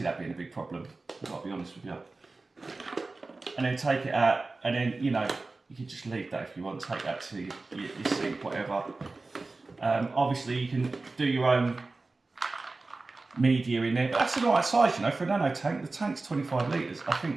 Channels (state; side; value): quieter; left; 3.5 dB